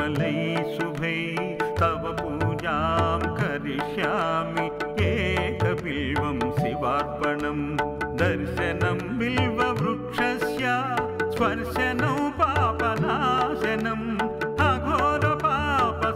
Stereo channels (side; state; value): both; identical; correlation 1.00